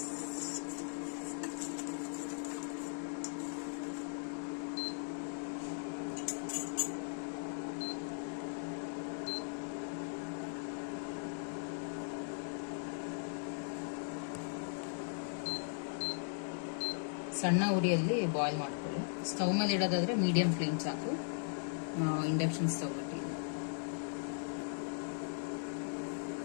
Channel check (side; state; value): right; silent; digital silence